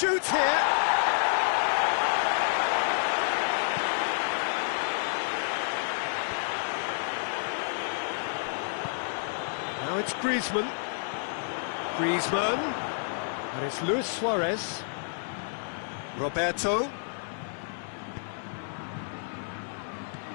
here. Now it's Griezmann. And it's Luis Suarez. Roberto.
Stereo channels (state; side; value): silent; right; 58 dB below the other